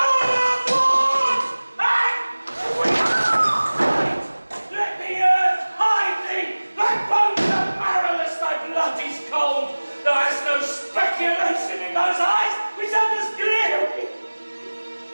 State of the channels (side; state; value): both; inverted; correlation -1.00